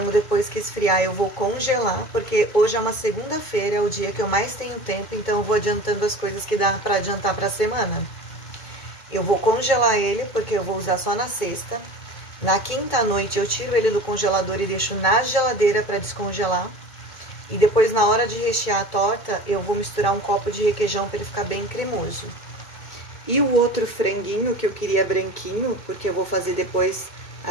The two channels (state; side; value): late; right; 2.2 ms